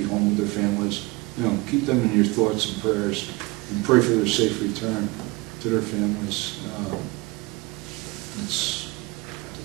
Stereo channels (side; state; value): left; quieter; 23.9 dB